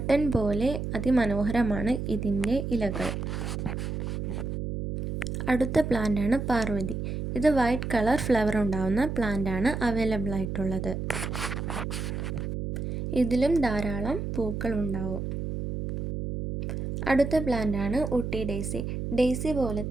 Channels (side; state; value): right; noise; hum, 4 dB below the sound